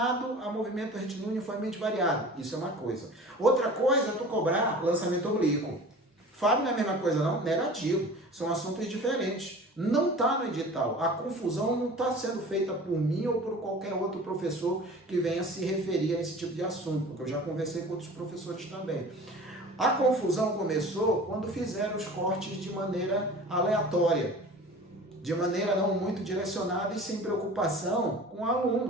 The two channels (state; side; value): normal; both; correlation 0.41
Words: a movimento retilíneo uniformemente variado. Isso é uma coisa. Outra coisa é tu cobrar lançamento oblíquo. Fábio não é a mesma coisa não? Negativo. São assuntos diferentes. Não está no edital. A confusão não está sendo feita por mim ou por qualquer outro professor que venha se referir a esse tipo de assunto, porque eu já conversei com outros professores também. A confusão começou quando fizeram os cortes de maneira aleatória, de maneira não muito direcionada e sem preocupação com o